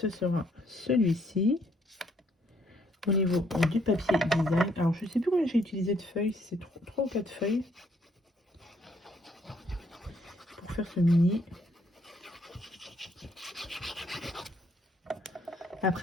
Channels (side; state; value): both; normal; correlation 0.68